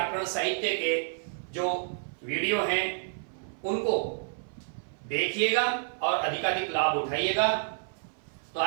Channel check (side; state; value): left; silent; 55 dB below the other